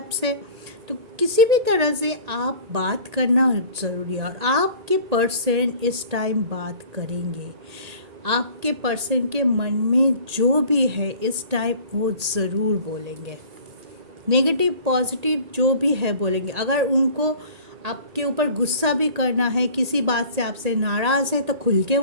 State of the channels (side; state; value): left; late; 1.8 ms